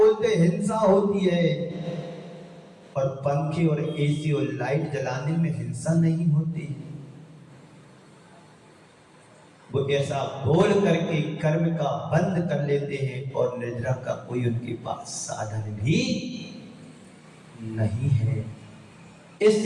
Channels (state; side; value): identical; both; correlation 1.00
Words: हिंसा होती है, और पंखे और एसी और लाइट जलाने में हिंसा नहीं होती। वो ऐसा बोल करके कर्म का बंद कर लेते हैं, और निद्रा का कोई उनके पास साधन भी नहीं है।